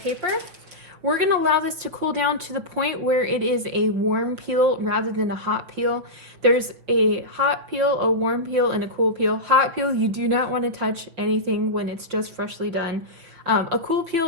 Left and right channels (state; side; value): late; left; 5.9 ms